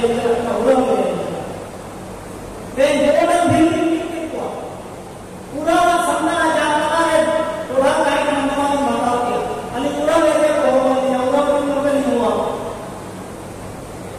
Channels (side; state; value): both; identical; correlation 1.00